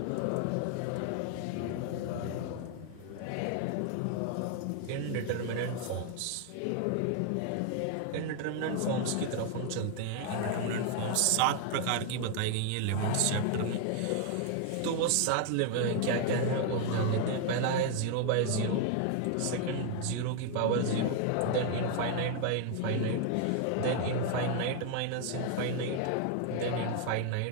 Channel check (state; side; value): different; both; correlation 0.00